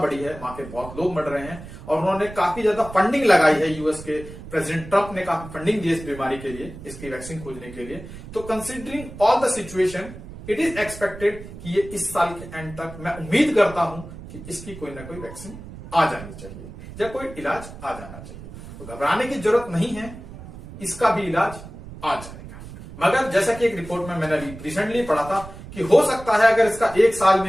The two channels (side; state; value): right; noise; rumble, 14 dB below the sound